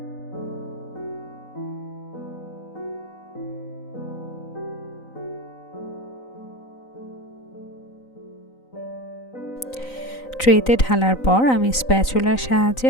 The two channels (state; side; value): late; right; 3.9 ms